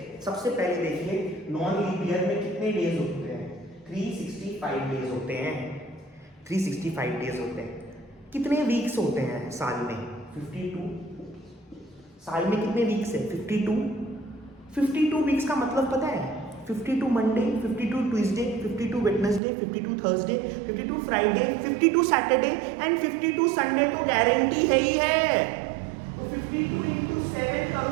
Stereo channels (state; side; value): drops out; left; at 19.4 s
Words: सबसे पहले देखिए, नॉन लीप ईयर में कितने डेज होते हैं? 365 डेज होते हैं। 365 डेज होते हैं। कितने वीक्स होते हैं साल में? 52। साल में कितने वीक्स है? 52। 52 वीक्स का मतलब पता है? 52 Monday, 52 Tuesday, 52 Wednesday, 52 Thursday, 52 Friday, 52 Saturday and 52 Sunday तो गारंटी है ही है। तो 52 into 7